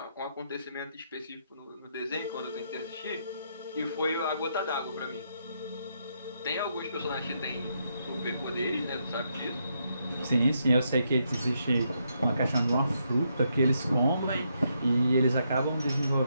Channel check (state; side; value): inverted; both; correlation -0.78